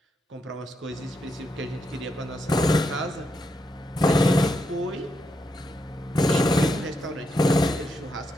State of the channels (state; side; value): normal; both; correlation 0.83